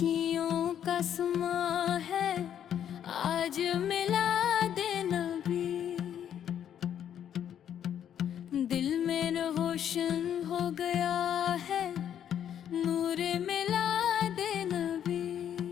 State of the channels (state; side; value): quieter; right; 9.6 dB